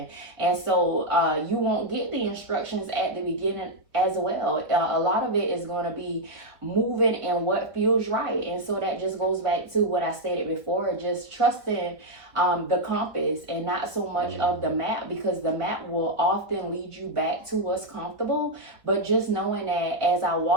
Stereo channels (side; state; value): left; late; 1.4 ms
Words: And so you won't get the instructions at the beginning as well. A lot of it is going to be moving in what feels right. And so that just goes back to what I stated before, just trusting the compass and not so much of the map, because the map will often lead you back to what's comfortable. But just knowing that as I